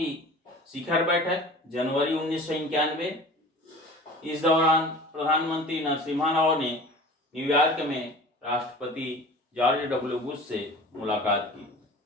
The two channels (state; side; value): normal; both; correlation 0.40